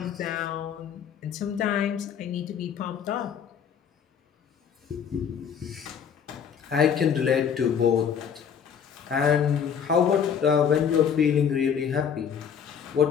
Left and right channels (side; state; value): right; quieter; 7.6 dB